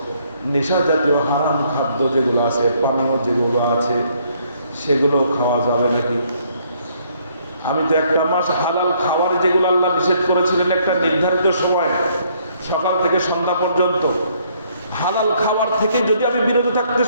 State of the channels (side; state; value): both; inverted; correlation -0.67